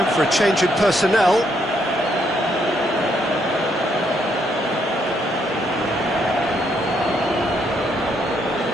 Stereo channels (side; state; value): both; normal; correlation 0.74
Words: for a change in personnel.